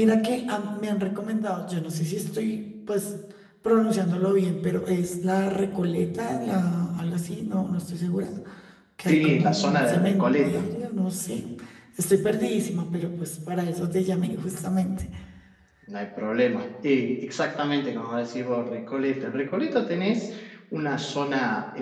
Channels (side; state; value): both; identical; correlation 1.00